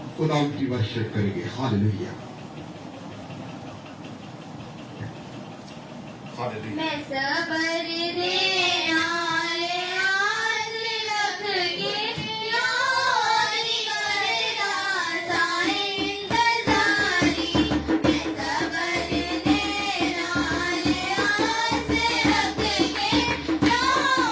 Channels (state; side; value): identical; both; correlation 1.00